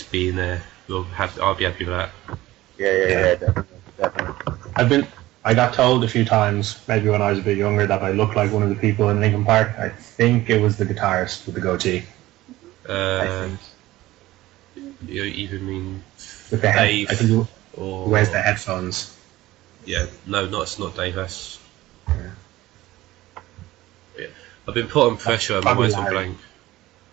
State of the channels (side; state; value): left; quieter; 16.9 dB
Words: being there. I'll be happy with that. Yeah, definitely. I got told a few times, maybe when I was a bit younger, that I looked like one of the people in Linkin Park. I think it was the guitarist with the goatee. I think. You even mean with the head? Dave, I think he or wears the headphones. Yeah, no, it's not Dave. That's yeah. I've been put on pressure. I'm Probably always Larry. blank.